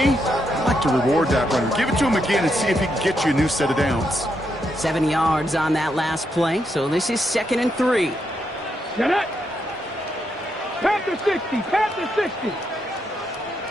I like to reward that runner. Give it to him again and see if he can get you a new set of downs. 7 yards on that last play, so this is 2nd and 3. Get it! Panther 60, Panther 60.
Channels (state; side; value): normal; both; correlation 0.80